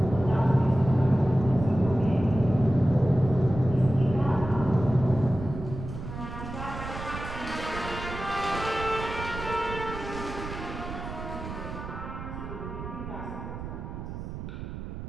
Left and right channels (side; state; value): right; noise; rumble, 9 dB below the sound